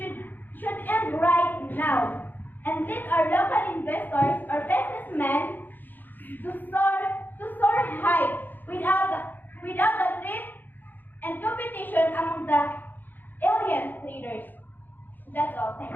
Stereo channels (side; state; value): right; late; 0.088 ms